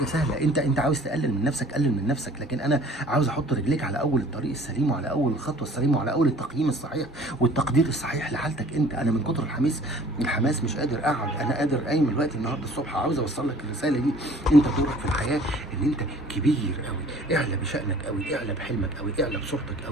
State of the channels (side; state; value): both; normal; correlation 0.51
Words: سهله. انت عاوز تقلل من نفسك، قلل من نفسك، لكن انا عاوز احط رجليك على اول الطريق السليم، وعلى اول الخطوه السليمه، وعلى اول التقييم الصحيح والتقدير الصحيح لحالتك. انا من كتر الحماس مش قادر اقعد. انا قادر قايم دلوقتي النهارده الصبح عاوز اوصل لك الرساله دي. انت دورك في الحياه ان انت كبير قوي، اعلى بشأنك قوي، اعلى بحلمك قوي، اعلى بصورتك